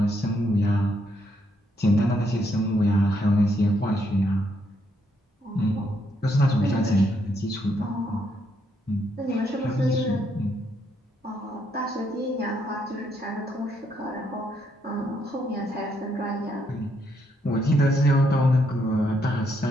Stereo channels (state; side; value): normal; both; correlation 0.75